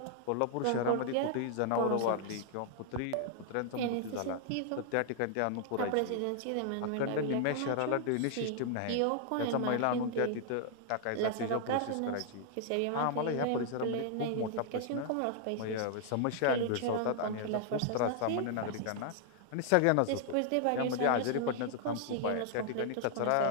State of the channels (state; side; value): different; both; correlation -0.01